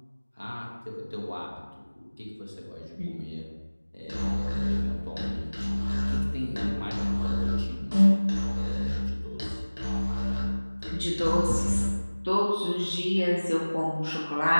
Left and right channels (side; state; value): both; inverted; correlation -1.00